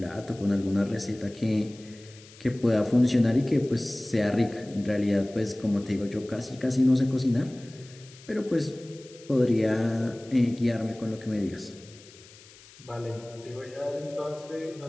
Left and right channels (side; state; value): left; noise; hiss, 22 dB below the sound